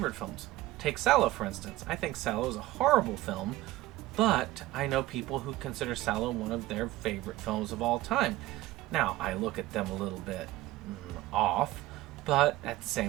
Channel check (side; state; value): left; quieter; 16.8 dB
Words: films. Take Sallow, for instance. I think Sallow is a horrible film, but I know people who consider Sallow one of their favorite films of all time. Now, I look at them a little bit off, but at the